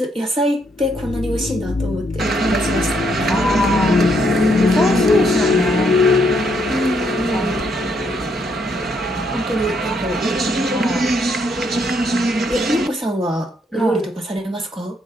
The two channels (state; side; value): normal; both; correlation 0.73